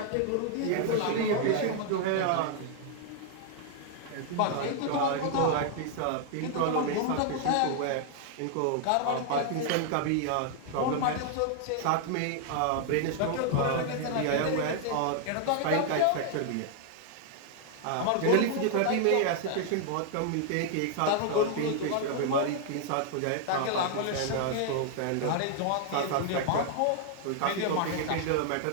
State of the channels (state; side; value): different; both; correlation 0.00